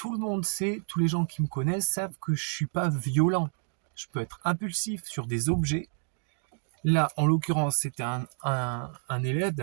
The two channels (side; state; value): left; silent; digital silence